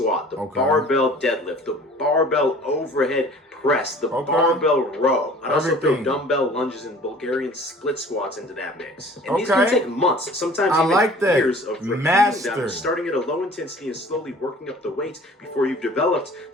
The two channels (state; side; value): normal; both; correlation 0.48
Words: the barbell deadlift, the barbell overhead press, the barbell row. I'd also throw dumbbell lunges and Bulgarian split squats into that mix. And these can take months, sometimes even years of repeating them, starting at a low intensity and slowly working up the weights before you've developed